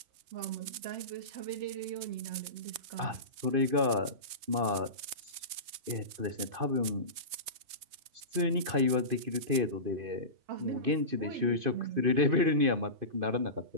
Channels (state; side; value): late; left; 3.2 ms